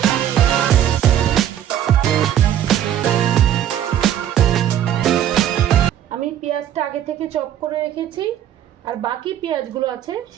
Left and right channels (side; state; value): left; quieter; 10.7 dB